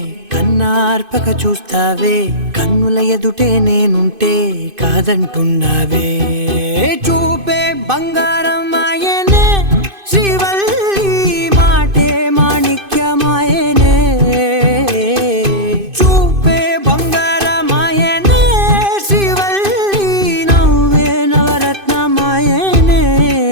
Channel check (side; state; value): left; late; 2.5 ms